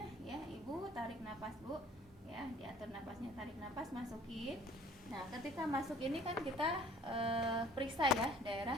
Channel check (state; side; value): normal; both; correlation 0.54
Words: ya, ibu tarik napas bu ya, diatur napasnya, tarik napas, masukin. Nah ketika masuk ini kan kita periksa ya daerah